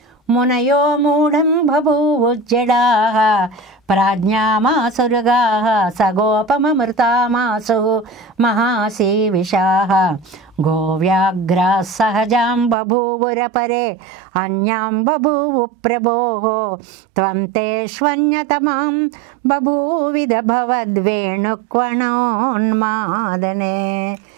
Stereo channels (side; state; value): left; drops out; at 12.8 s